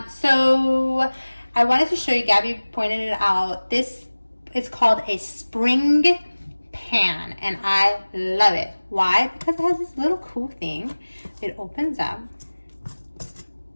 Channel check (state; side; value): inverted; both; correlation -1.00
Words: So I wanted to show you, Gabby pointed it out, this is called a spring pan and I love it. Why? Because it has this little cool thing. It opens up.